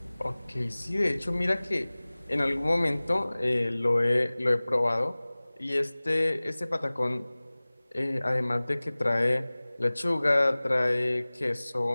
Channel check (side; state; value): both; inverted; correlation -1.00